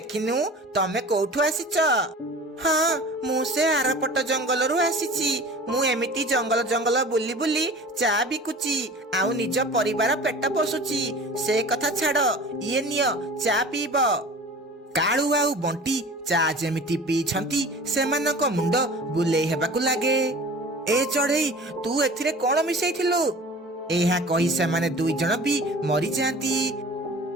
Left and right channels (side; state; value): both; normal; correlation 0.40